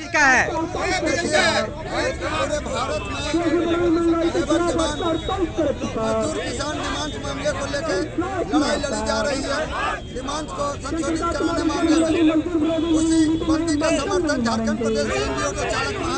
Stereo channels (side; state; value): both; identical; correlation 1.00